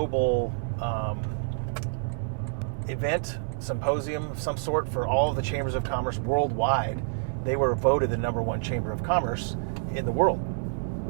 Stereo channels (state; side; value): silent; left; digital silence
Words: event, symposium of some sort for all of the chambers of commerce worldwide, they were voted the #1 chamber of commerce in the world.